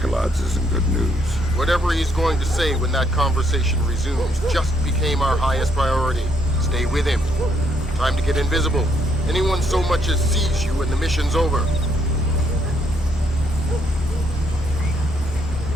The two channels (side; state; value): both; normal; correlation 0.71